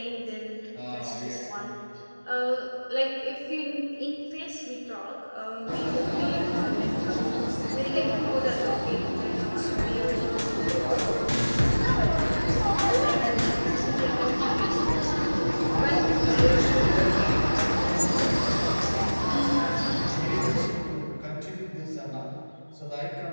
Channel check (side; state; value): both; inverted; correlation -1.00